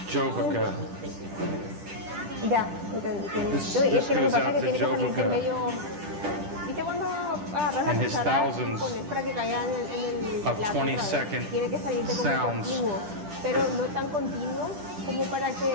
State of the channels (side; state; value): left; late; 10 ms